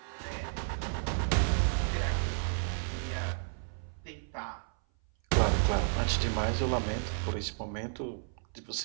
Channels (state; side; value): silent; left; 56 dB below the other